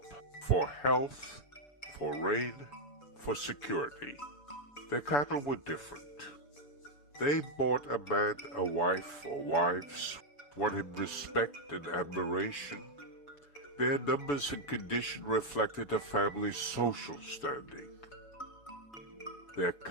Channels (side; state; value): right; late; 6.9 ms